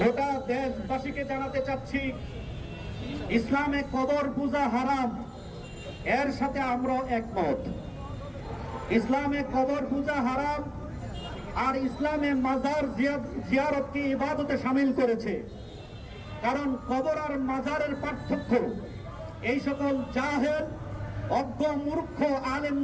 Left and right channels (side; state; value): both; identical; correlation 1.00